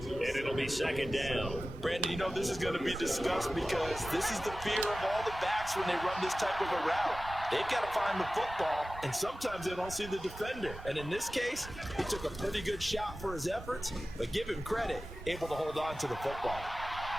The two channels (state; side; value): normal; both; correlation 0.95